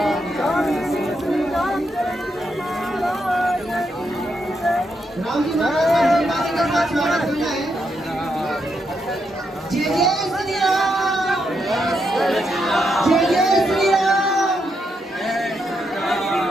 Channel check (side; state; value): both; normal; correlation 0.81